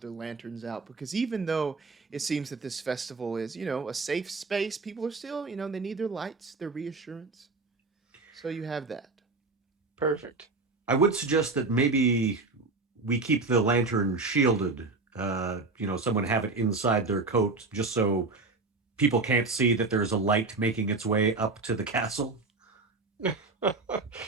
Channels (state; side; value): quieter; left; 3.7 dB